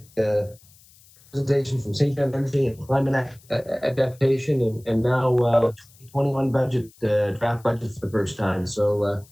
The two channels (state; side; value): noise; left; hiss, 27 dB below the sound